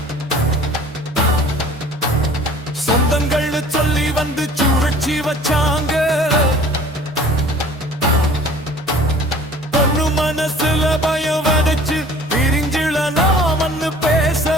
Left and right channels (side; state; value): both; normal; correlation 0.49